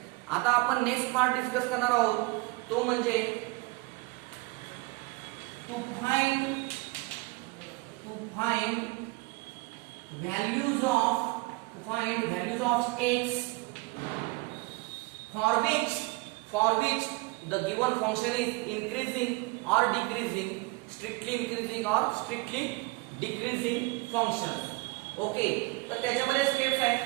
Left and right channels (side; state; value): left; quieter; 24.1 dB